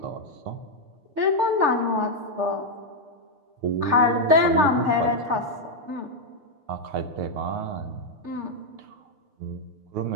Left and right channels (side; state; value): left; late; 6.7 ms